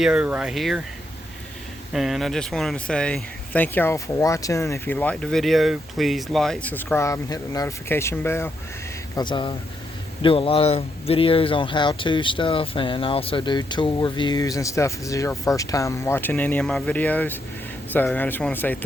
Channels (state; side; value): normal; both; correlation 0.79